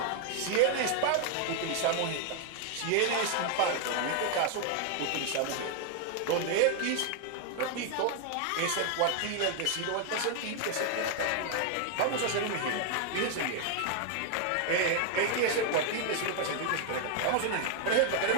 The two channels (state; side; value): different; both; correlation 0.00